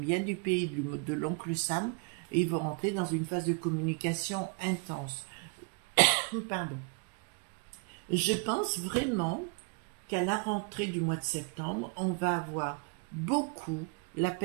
du pays de l'oncle Sam. Et ils vont rentrer dans une phase de communication intense. Pardon. Je pense vraiment qu'à la rentrée du mois de septembre, on va avoir beaucoup La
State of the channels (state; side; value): quieter; left; 34.4 dB